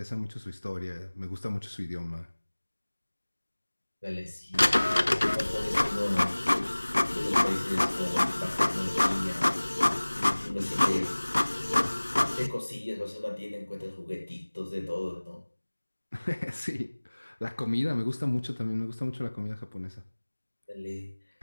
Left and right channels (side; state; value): both; inverted; correlation -1.00